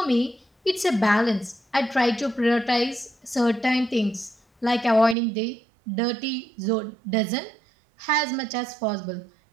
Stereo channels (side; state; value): left; drops out; at 5.2 s